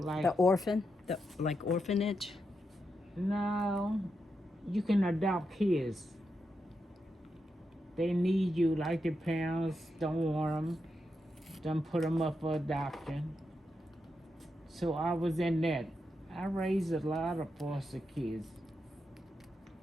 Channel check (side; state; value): both; normal; correlation 0.85